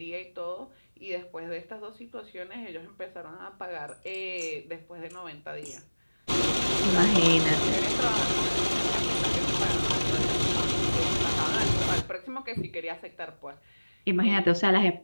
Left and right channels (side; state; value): both; inverted; correlation -1.00